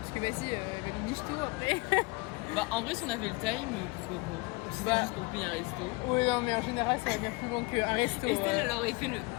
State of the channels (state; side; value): quieter; right; 26.4 dB